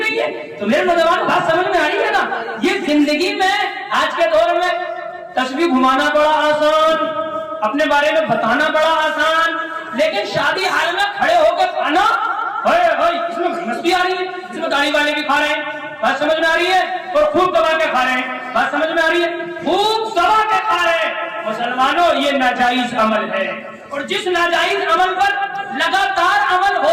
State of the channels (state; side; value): identical; both; correlation 1.00